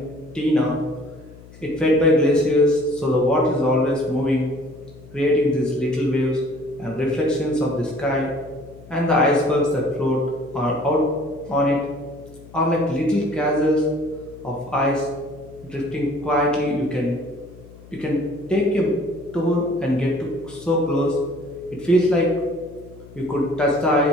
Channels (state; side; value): noise; left; hum, 20 dB below the sound